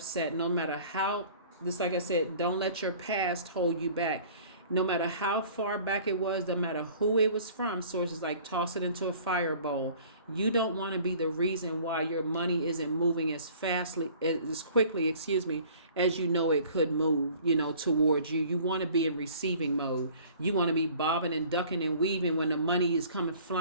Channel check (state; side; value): inverted; both; correlation -0.50